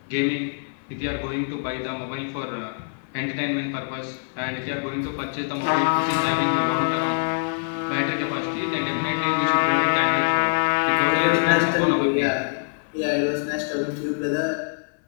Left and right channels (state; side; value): silent; right; 56 dB below the other